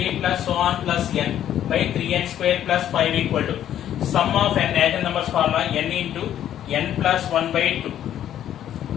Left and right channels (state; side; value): quieter; right; 11.0 dB